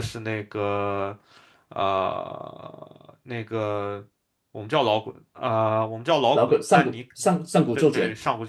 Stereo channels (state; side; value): identical; both; correlation 1.00